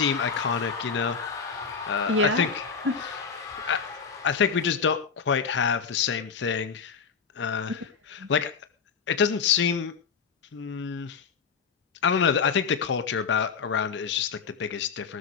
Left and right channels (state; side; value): quieter; right; 5.9 dB